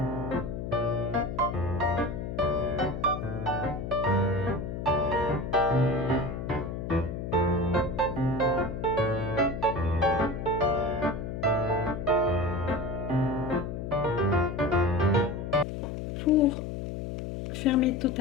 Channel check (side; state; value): left; noise; hum, 5 dB below the sound